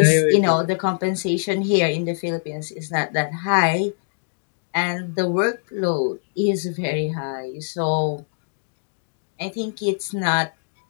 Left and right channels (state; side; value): silent; right; digital silence